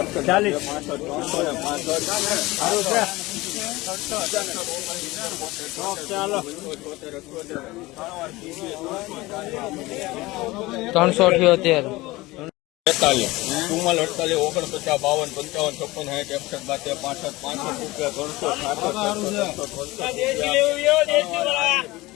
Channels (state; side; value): quieter; right; 20.2 dB